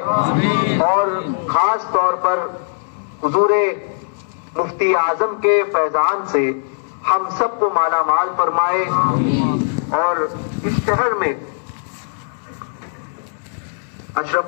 اور خاص طور پر حضور مفتی اعظم کے فیضان سے ہم سب کو مالا مال فرمائے، اور اس شہر میں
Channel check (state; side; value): silent; right; digital silence